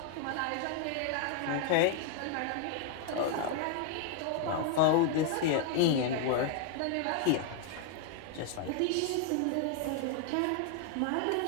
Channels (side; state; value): both; different; correlation 0.00